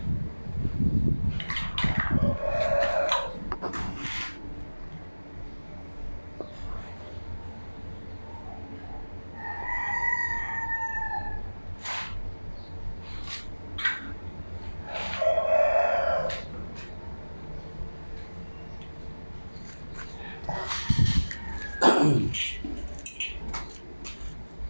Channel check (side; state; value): both; inverted; correlation -1.00